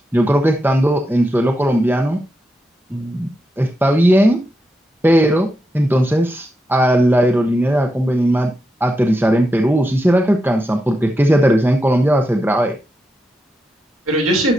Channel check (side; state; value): both; normal; correlation 0.86